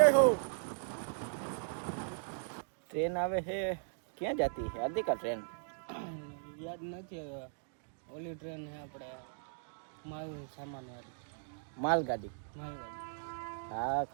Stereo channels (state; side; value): silent; left; digital silence